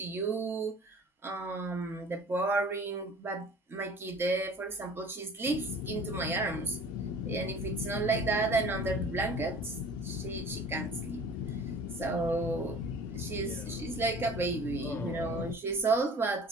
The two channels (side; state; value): both; normal; correlation 0.45